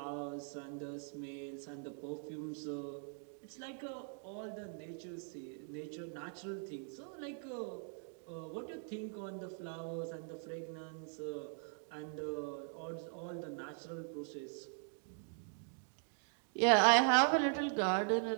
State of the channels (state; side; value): silent; left; 50 dB below the other